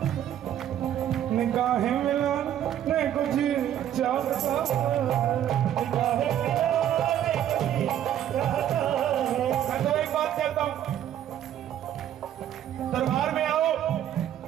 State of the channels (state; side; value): quieter; left; 10.9 dB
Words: निगाहें मिलाने कुछ चाहता, निगाहें मिलाने कुछ चाहता। मैं तो एक बात कहता हूं, दरबार में आओ,